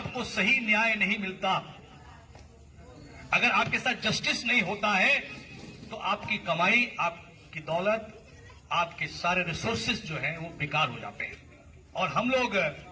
सही न्याय नहीं मिलता, अगर आपके साथ जस्टिस नहीं होता है, तो आपकी कमाई, आपकी दौलत, आपके सारे रिसोर्सेज जो हैं वो बेकार हो जाते हैं। और हम लोग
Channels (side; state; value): both; identical; correlation 1.00